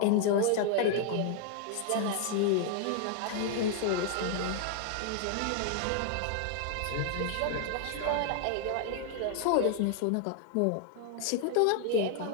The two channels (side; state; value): both; different; correlation 0.00